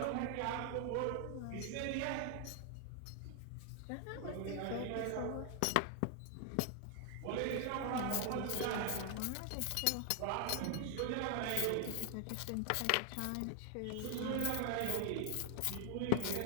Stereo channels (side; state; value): both; different; correlation 0.00